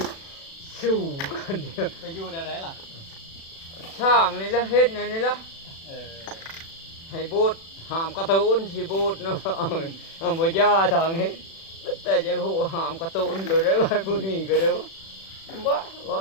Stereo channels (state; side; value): late; right; 36 ms